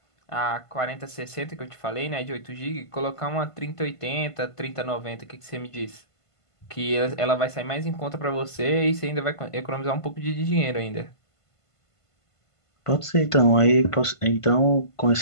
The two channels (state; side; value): late; right; 1.5 ms